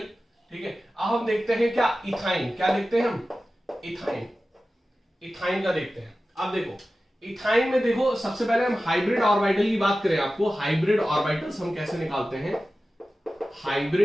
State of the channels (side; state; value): both; normal; correlation 0.95